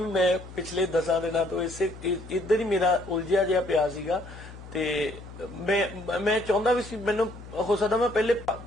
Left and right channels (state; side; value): noise; left; hum, 15 dB below the sound